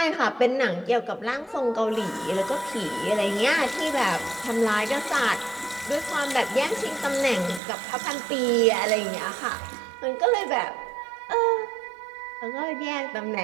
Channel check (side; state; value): left; drops out; at 7.6 s